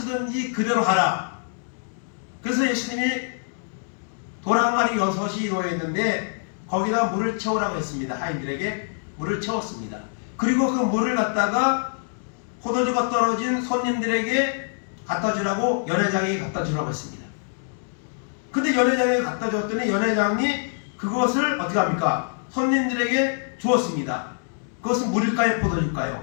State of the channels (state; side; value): silent; right; digital silence